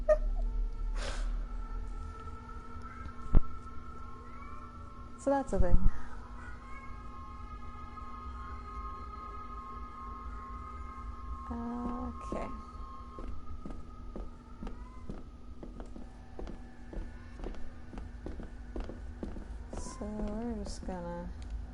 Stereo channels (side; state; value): both; identical; correlation 1.00